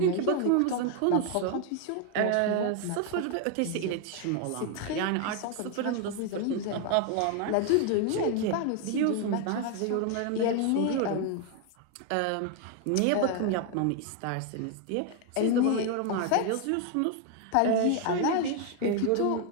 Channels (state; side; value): different; both; correlation 0.01